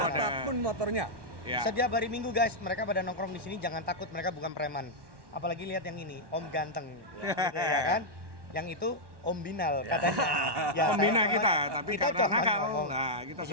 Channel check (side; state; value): left; late; 1.1 ms